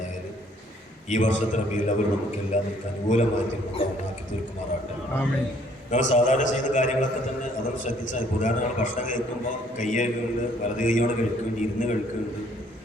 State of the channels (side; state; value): both; normal; correlation 0.62